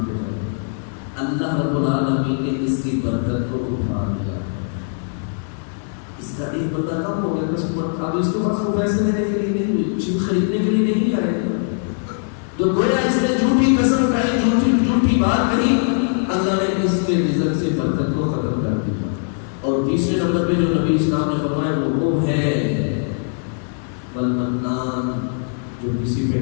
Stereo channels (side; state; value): right; silent; 62 dB below the other